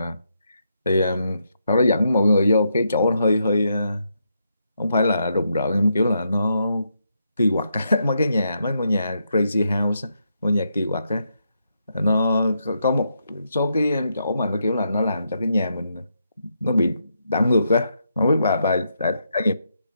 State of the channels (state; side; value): inverted; both; correlation -0.80